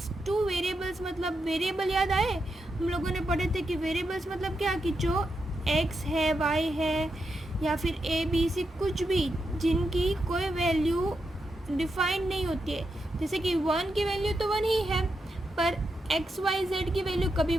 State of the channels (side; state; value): both; normal; correlation 0.85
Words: मतलब वेरिएबल याद आए? हम लोगों ने पढ़े थे कि वेरिएबल्स मतलब क्या, कि जो x है, y है या फिर a b c कुछ भी जिनकी कोई वैल्यू डिफाइंड नहीं होती है, जैसे कि 1 की वैल्यू तो 1 ही है, पर एक्स वाई जेड की वैल्यू कभी